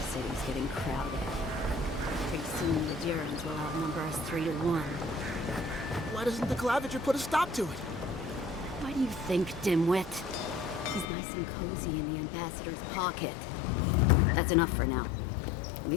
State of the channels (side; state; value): right; drops out; at 11.1 s